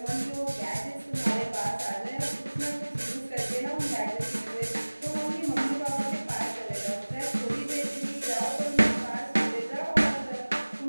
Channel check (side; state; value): both; inverted; correlation -1.00